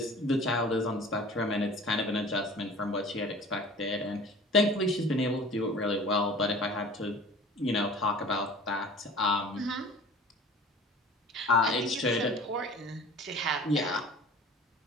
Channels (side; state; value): both; normal; correlation 0.43